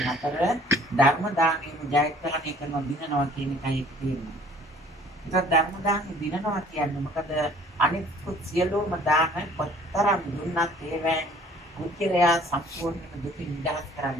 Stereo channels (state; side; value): normal; both; correlation 0.54